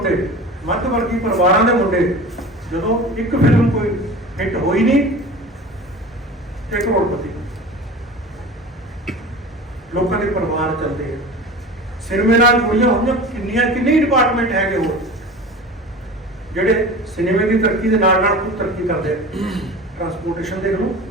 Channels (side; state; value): both; normal; correlation 0.35